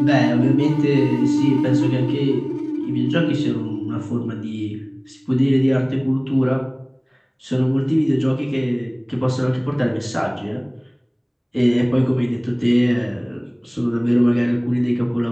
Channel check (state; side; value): identical; both; correlation 1.00